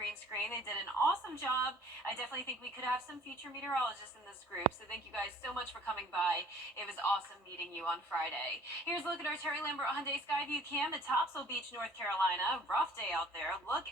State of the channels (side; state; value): both; normal; correlation 0.53